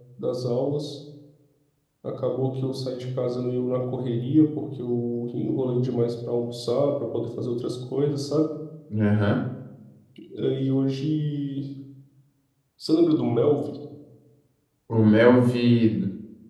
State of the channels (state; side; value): identical; both; correlation 1.00